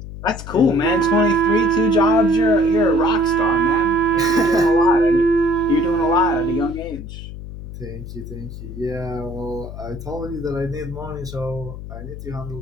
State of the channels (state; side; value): noise; left; hum, 11 dB below the sound